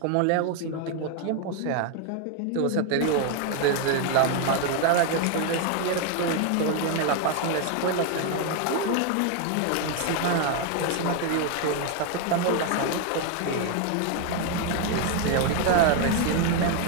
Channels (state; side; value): different; both; correlation 0.01